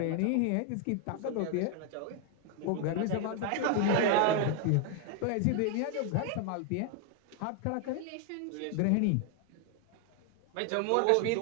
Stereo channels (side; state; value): both; different; correlation 0.00